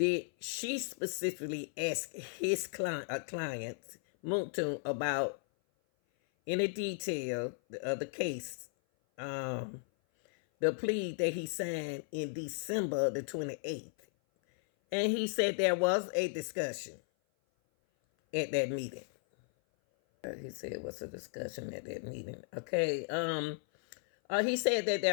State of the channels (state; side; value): silent; right; 54 dB below the other